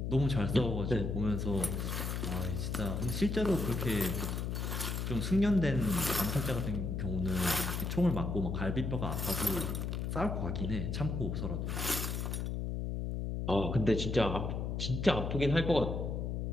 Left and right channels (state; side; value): noise; left; hum, 2 dB below the sound